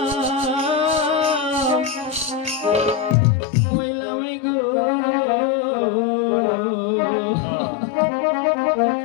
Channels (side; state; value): right; drops out; at 3.2 s